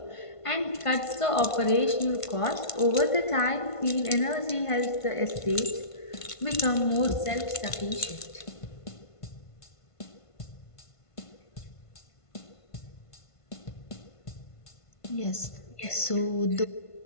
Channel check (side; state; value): right; late; 1.5 ms